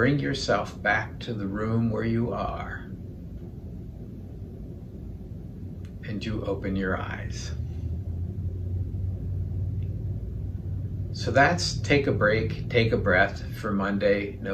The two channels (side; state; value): both; identical; correlation 1.00